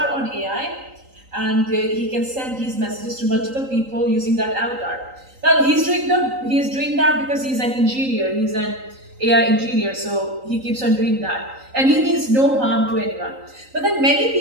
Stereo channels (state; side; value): late; left; 3.9 ms